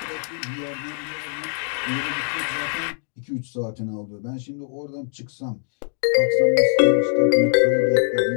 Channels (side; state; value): right; silent; digital silence